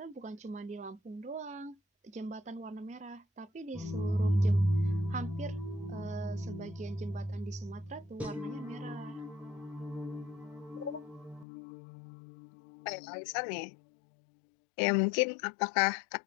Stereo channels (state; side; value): drops out; right; at 11.5 s